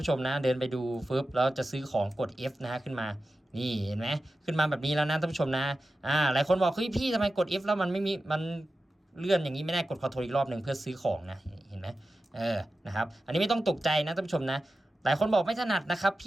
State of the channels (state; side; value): normal; both; correlation 0.93